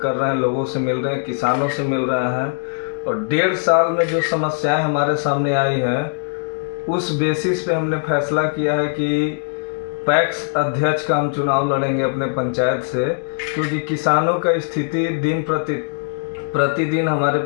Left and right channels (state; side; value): silent; right; digital silence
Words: कर रहे हैं, लोगों से मिल रहे हैं, किसानों से मिल रहे हैं और 1.5 साल में जो समस्याएं हमारे सामने आई हैं उस बेसिस पे हमने फैसला किया है कि पैक्स अध्यक्ष का हम चुनाव लड़ेंगे अपने पंचायत से, क्योंकि किसानों का स्थिति दिन प्रतिदिन हमारे